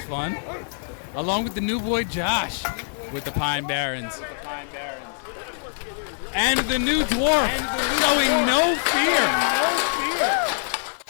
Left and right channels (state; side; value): silent; right; 63 dB below the other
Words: fun. Along with the new boy Josh with the Pine Barrens. And the new dwarf showing no fear.